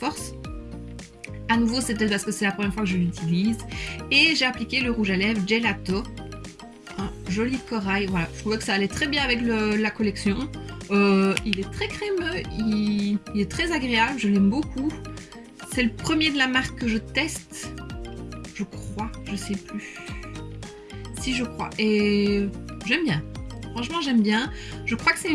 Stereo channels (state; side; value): identical; both; correlation 1.00